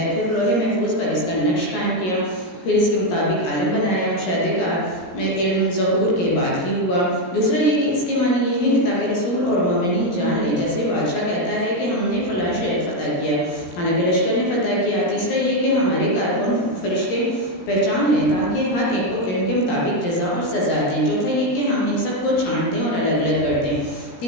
پھر لوح محفوظ پر اس کا نقش قائم کیا، پھر اس کے مطابق عالم بنایا۔ مشاہدے کا علم ظہور کے بعد ہی ہوا۔ دوسرا یہ کہ اس کے معنی یہ ہے کہ تاکہ رسول اور مومنین جان لیں، جیسے بادشاہ کہتا ہے کہ ہم نے فلاں شہر فتح کیا، حالانکہ لشکر نے فتح کیا۔ تیسرا یہ کہ ہمارے کارکن فرشتے پہچان لیں تاکہ ہر ایک کو علم کے مطابق جزا اور سزا دیں۔ چوتھا یہ کہ ہم ان سب کو چھانٹ دیں اور الگ الگ کر دیں۔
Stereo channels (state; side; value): late; right; 17 ms